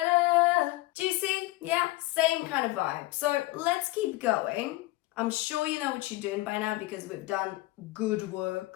Do you see? Yeah, same kind of vibe. So let's keep going. I'm sure you know what you're doing by now because we've done good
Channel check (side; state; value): right; quieter; 19.3 dB